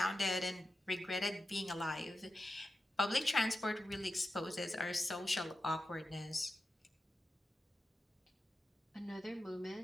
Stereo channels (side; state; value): both; normal; correlation 0.91